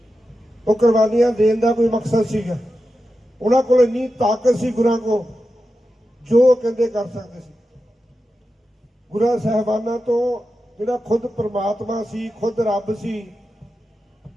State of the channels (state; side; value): normal; both; correlation 0.91